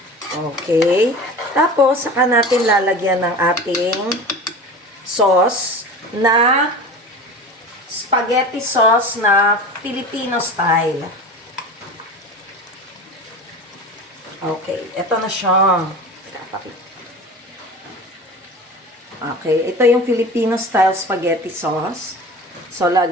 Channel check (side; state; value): both; normal; correlation 0.34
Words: Okay. Tapos, saka natin lalagyan ng ating sauce na spaghetti sauce na Filipino style. Okay. Ito na siya. Okay. Ito yung Filipino style spaghetti sauce. So,